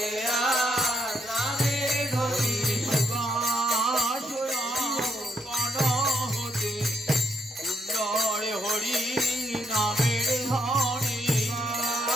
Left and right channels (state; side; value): normal; both; correlation 0.75